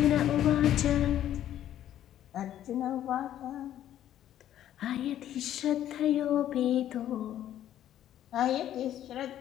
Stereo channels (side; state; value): right; quieter; 11.6 dB